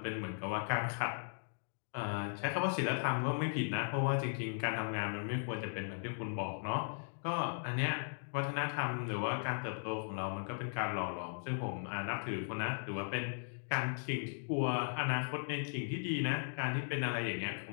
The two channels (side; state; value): right; silent; digital silence